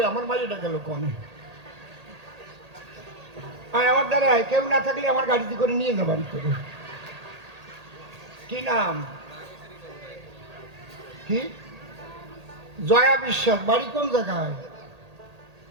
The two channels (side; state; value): left; late; 1.8 ms